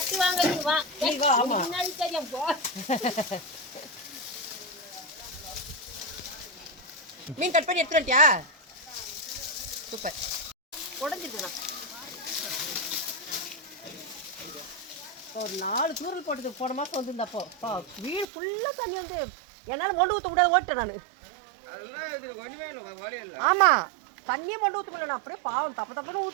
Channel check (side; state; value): left; drops out; at 18.2 s